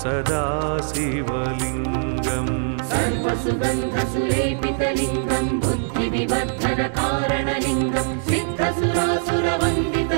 सदा शिवलिङ्गम् सर्वसुगन्धसुलेपितलिङ्गम् बुद्धिविवर्धनकारणलिङ्गम्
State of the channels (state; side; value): silent; left; digital silence